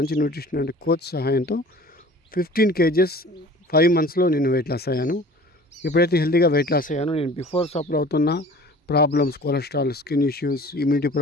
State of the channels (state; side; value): normal; both; correlation 0.45